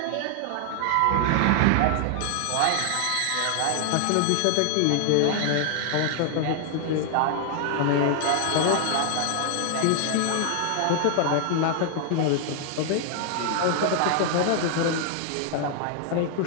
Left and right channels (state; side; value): different; both; correlation 0.00